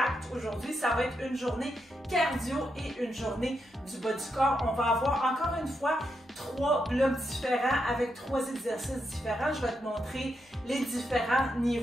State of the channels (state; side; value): normal; both; correlation 0.83